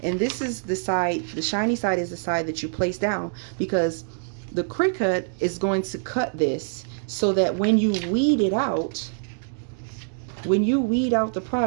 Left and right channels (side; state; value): left; silent; digital silence